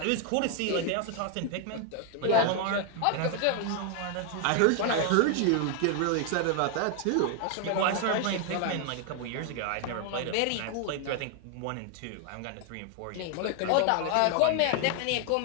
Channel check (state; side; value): different; both; correlation 0.00